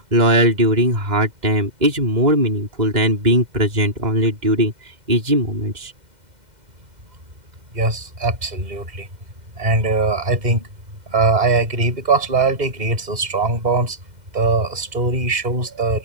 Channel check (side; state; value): left; late; 2.1 ms